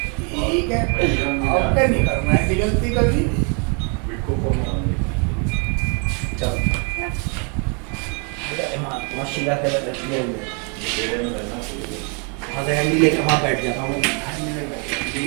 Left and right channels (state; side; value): quieter; left; 36.4 dB